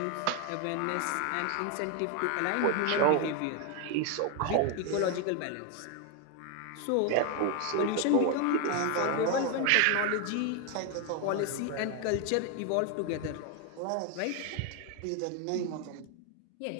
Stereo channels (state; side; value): different; both; correlation 0.01